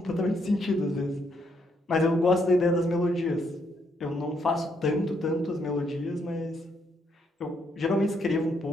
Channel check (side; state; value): both; normal; correlation 0.74